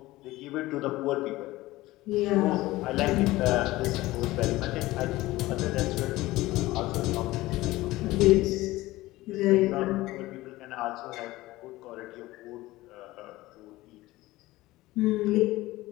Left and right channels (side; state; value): right; quieter; 18.2 dB